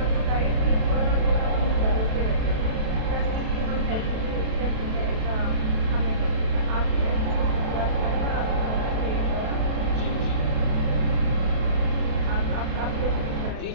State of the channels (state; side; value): late; left; 32 ms